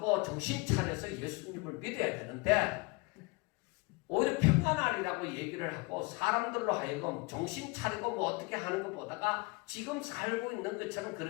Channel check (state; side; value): quieter; right; 27.3 dB